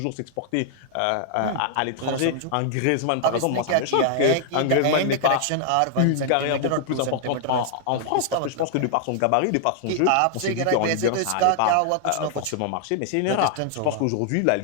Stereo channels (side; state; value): both; different; correlation 0.00